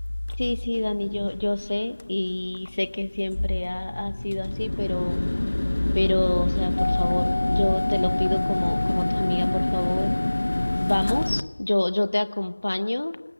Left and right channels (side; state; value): both; inverted; correlation -1.00